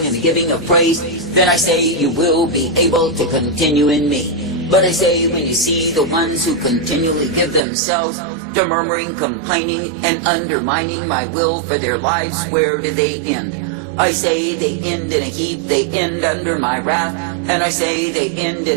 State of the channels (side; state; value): left; drops out; at 7.6 s